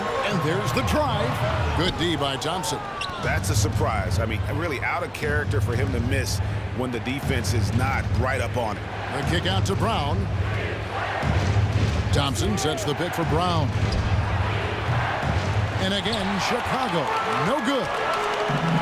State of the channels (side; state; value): both; identical; correlation 1.00